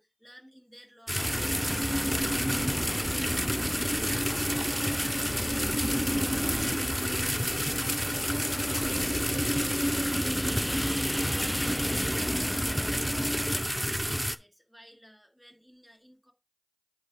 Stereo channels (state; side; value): identical; both; correlation 1.00